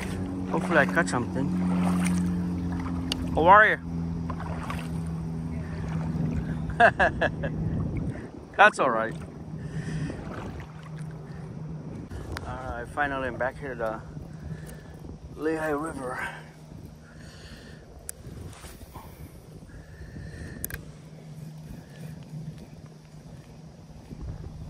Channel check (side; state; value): both; identical; correlation 1.00